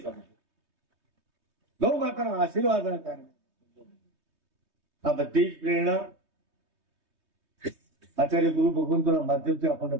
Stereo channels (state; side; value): late; left; 3.2 ms